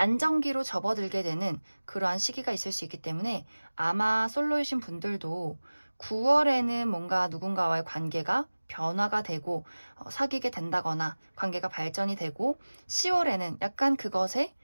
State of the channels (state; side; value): inverted; both; correlation -1.00